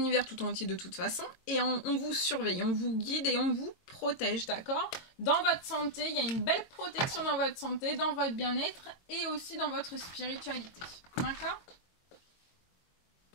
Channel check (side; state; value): right; late; 22 ms